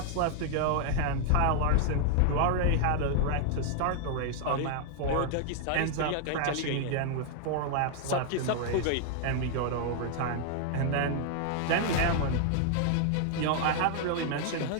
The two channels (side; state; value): both; different; correlation 0.00